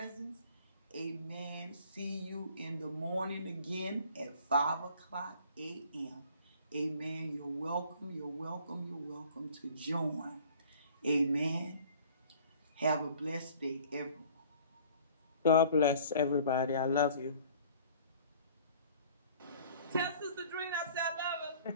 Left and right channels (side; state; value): both; inverted; correlation -0.51